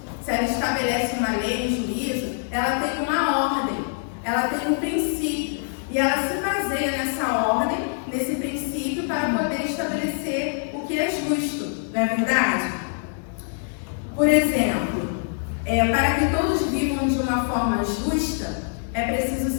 se ela estabelece uma lei, um juízo, ela tem uma ordem, ela tem um princípio. E ela se baseia nessa ordem, nesse princípio, para poder estabelecer o que é justo. Não é verdade? Por exemplo, para que todos vivam de uma forma justa, é preciso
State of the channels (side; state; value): right; silent; 57 dB below the other